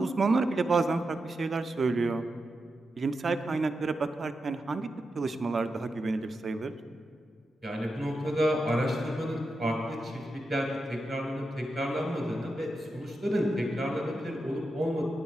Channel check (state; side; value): normal; both; correlation 0.88